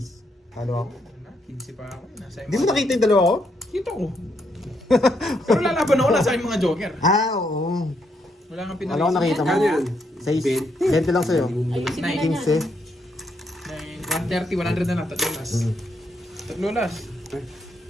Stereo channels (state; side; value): normal; both; correlation 0.76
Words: Halo ako. 15 pa ako. Nasa Hindi mo nakita yung dalawa ko? Kita ko. Pero lalaban ako, nasa aking mga joker. Oo. Wala kang Alam ko nakita mo. Kano yan? 6. 20 lang sa'yo. Ayusin mo na Nice. yan. 130, 100 na lang. Tatlo last. Tatlo last.